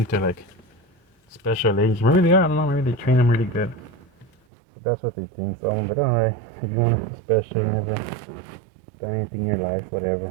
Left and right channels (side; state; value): left; drops out; at 4.3 s